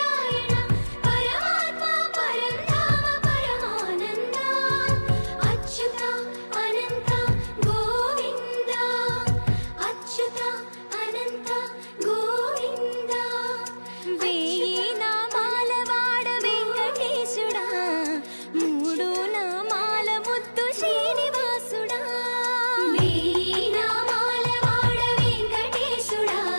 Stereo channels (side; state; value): both; inverted; correlation -1.00